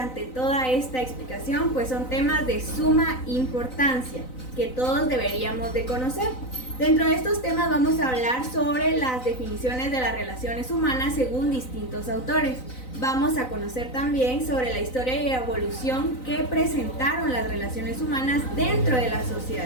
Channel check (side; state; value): right; late; 3.9 ms